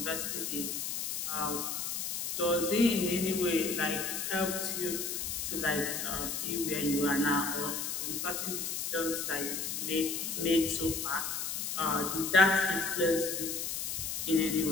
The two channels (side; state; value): left; noise; hiss, 3 dB below the sound